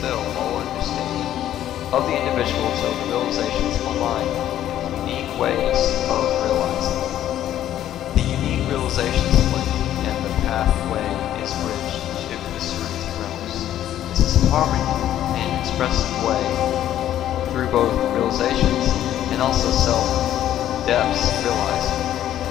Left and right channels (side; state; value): right; quieter; 11.9 dB